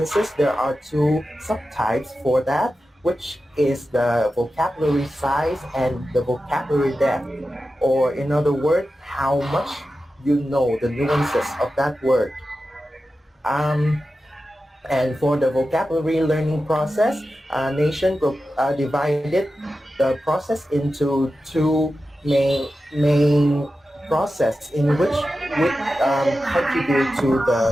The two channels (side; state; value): both; normal; correlation 0.92